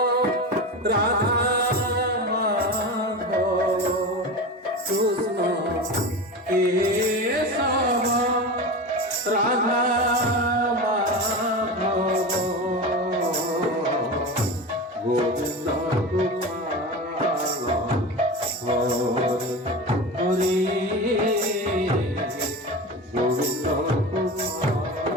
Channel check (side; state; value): both; normal; correlation 0.26